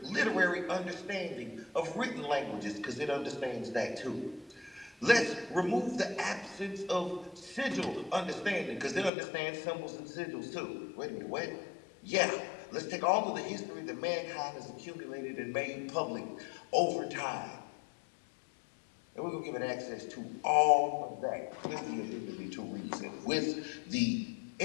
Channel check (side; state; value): right; drops out; at 9.1 s